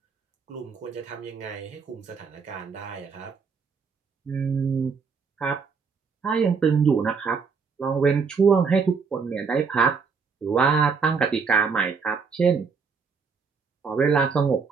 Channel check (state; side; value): quieter; left; 5.4 dB